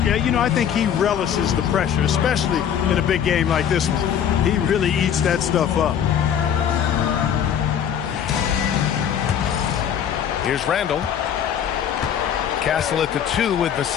Yeah, you know, I think he relishes the pressure, especially in a big game like this one. He really eats that stuff up. Here's Randle. Castle at the 2 with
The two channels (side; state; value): right; quieter; 8.8 dB